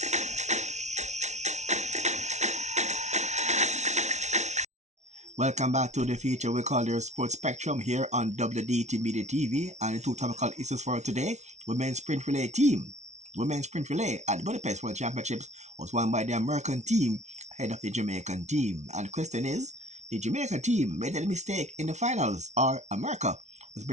Welcome back to the feature we call your Sports Spectrum here on WDT Media TV. And the two topical issues for today: Women's Sprint Relay Team. Women's Sprint Relay at the Budapest World Championships was won by the American team ahead of the Jamaican team. And the question is, the Jamaica team made a mistake in the finals, or America was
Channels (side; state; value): left; late; 0.33 ms